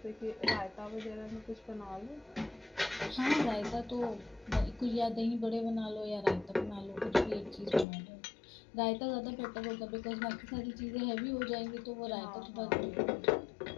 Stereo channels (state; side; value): drops out; right; at 7.9 s